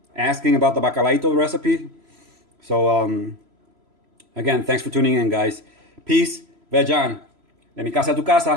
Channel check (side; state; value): left; late; 3.0 ms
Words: asking about the bacalaito recipe. So, Again, thanks for tuning in, guys. Peace. Vejan. De mi casa a tu